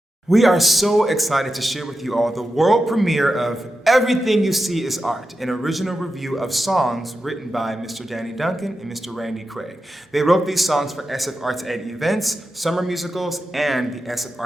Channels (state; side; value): normal; both; correlation 0.90